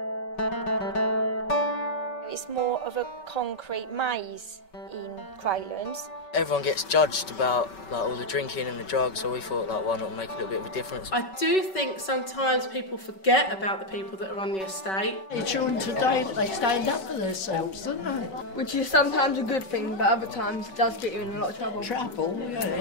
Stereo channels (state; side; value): late; right; 5.3 ms